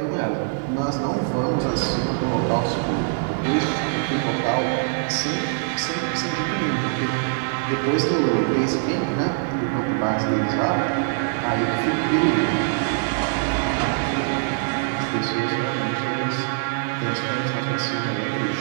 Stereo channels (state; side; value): silent; left; 63 dB below the other